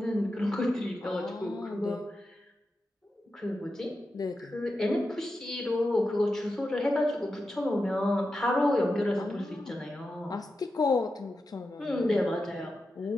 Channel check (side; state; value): both; normal; correlation 0.90